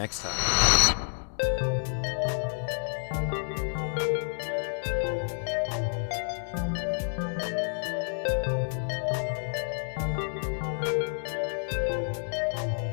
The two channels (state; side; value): silent; right; 57 dB below the other